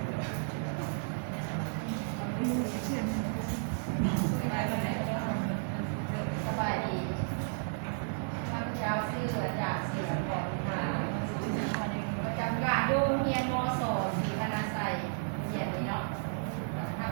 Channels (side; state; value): left; silent; digital silence